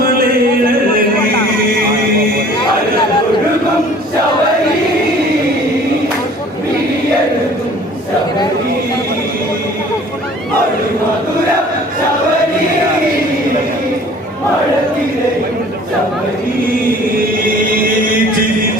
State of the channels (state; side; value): normal; both; correlation 0.50